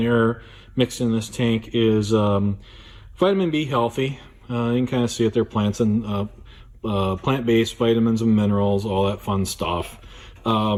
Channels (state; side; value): identical; both; correlation 1.00